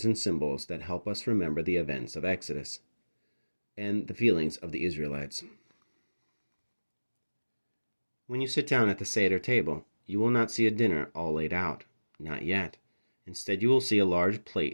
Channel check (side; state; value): both; inverted; correlation -1.00